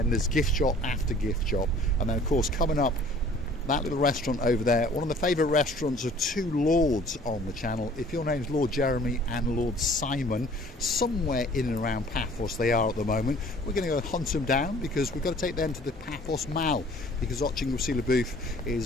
there's gift shop after gift shop, and then of course coming up that little restaurant over there, one of the favourite restaurants of two lords on the channel. If your name's Lord Jeremy and Lord Simon, somewhere in and around Paphos they are at the moment. We're going to go hunt them down, because we've got to take them to the Paphos Mall, because Oching Wasila Booth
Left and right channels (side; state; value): both; normal; correlation 0.52